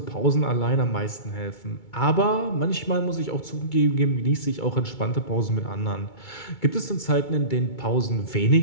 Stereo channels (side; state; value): right; late; 2.3 ms